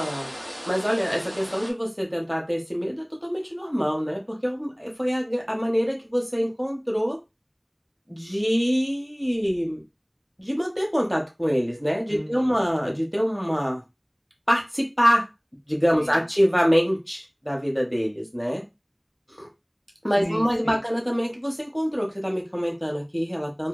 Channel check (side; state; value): both; identical; correlation 1.00